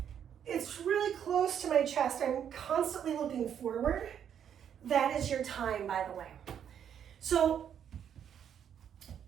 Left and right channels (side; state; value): left; quieter; 8.8 dB